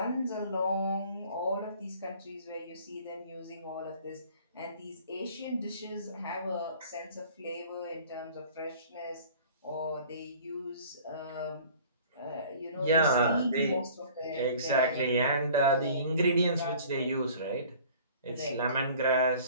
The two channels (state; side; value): inverted; both; correlation -0.49